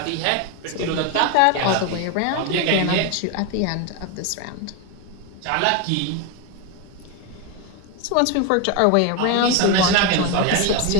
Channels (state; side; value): different; both; correlation 0.02